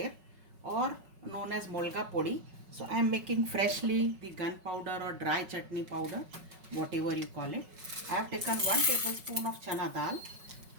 or known as molga podi. So I am making freshly the gunpowder or dry chutney powder, whatever you call it. I have taken 1 tablespoon of chana dal.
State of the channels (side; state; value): left; late; 5.3 ms